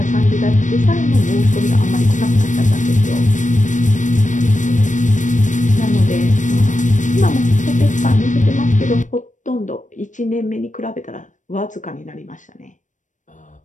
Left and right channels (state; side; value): late; right; 0.37 ms